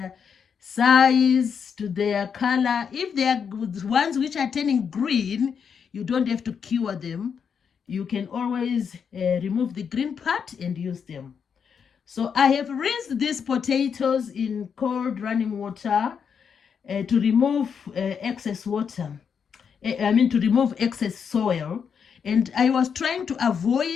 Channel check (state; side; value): quieter; right; 6.8 dB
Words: size, to their color. If they are ones which are turning green, you don't have to cure them. You can always remove the green part and use them. So I have rinsed these potatoes in cold running water to remove excess water. To remove excess soil. And I was trying to